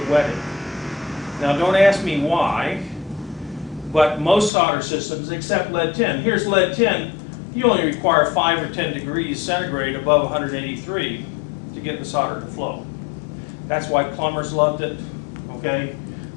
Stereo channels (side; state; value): right; drops out; at 4.5 s